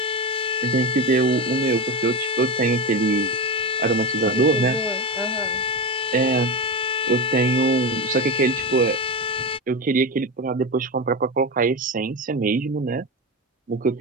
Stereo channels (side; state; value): both; normal; correlation 0.19